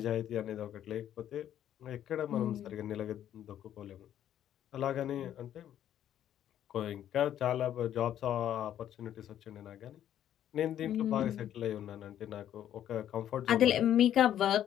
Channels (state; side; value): quieter; right; 10.9 dB